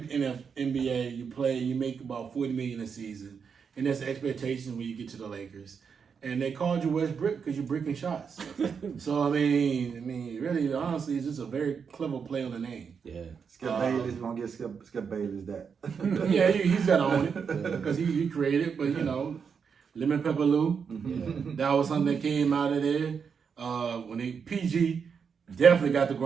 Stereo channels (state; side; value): quieter; left; 6.3 dB